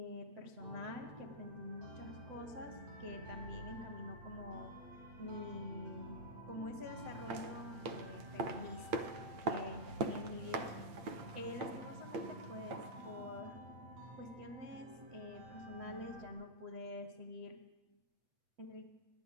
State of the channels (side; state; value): left; late; 8.7 ms